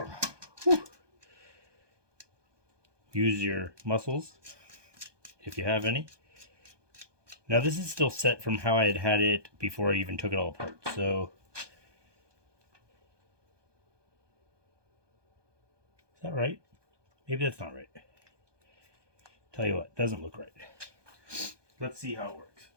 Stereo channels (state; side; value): late; left; 1.2 ms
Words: use your muscles if you have any. Now this is still set from how I had it before I even took it all apart, so is that right? Maybe that's not right. Tell you what, doesn't look right. Let's see how it works.